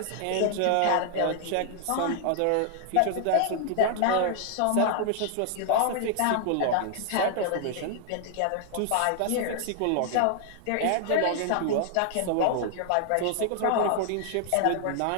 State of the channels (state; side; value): different; both; correlation 0.00